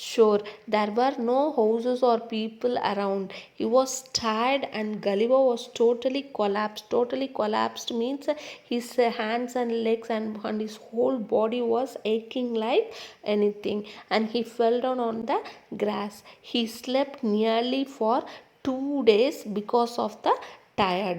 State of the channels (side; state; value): both; identical; correlation 1.00